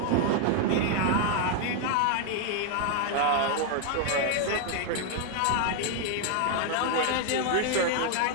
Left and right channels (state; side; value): different; both; correlation 0.00